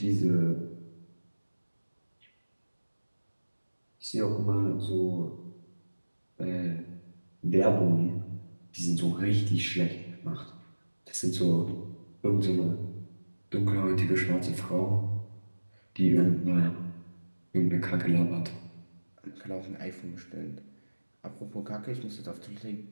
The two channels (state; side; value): inverted; both; correlation -1.00